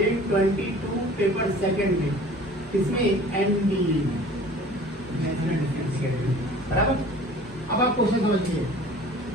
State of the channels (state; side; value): normal; both; correlation 0.46